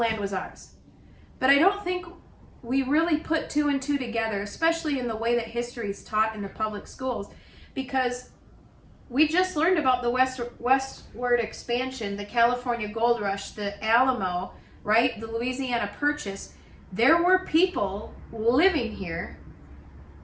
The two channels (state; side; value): identical; both; correlation 1.00